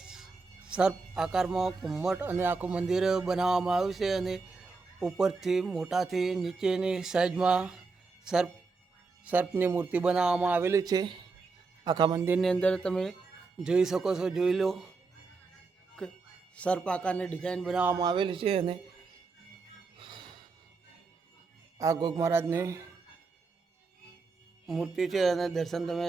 સર્પ આકારમાં ઘુમ્મટ અને આખું મંદિર બનાવવામાં આવ્યું છે અને ઉપરથી મોટાથી નીચેની સાઈઝમાં સર્પની મૂર્તિ બનાવવામાં આવેલી છે. આખા મંદિરની અંદર તમે જોઈ શકો છો, જોઈ લો કે સર્પ આકારની ડિઝાઇન બનાવવામાં આવેલી છે. અને આ ગુગ મહારાજની મૂર્તિ છે અને દર્શન તમે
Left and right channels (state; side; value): quieter; left; 4.2 dB